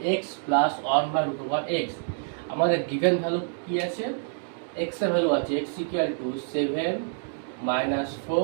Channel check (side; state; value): left; silent; digital silence